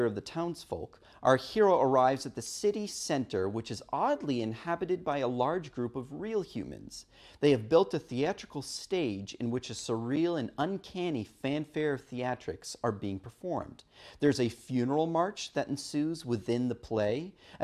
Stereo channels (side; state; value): both; identical; correlation 1.00